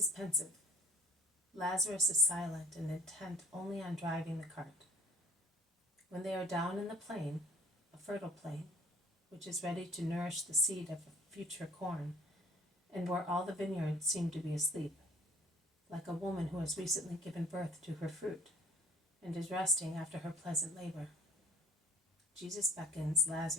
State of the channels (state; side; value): normal; both; correlation 0.49